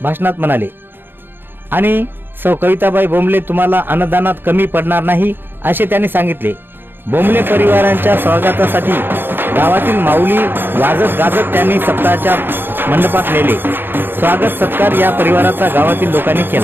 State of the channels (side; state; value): left; late; 0.10 ms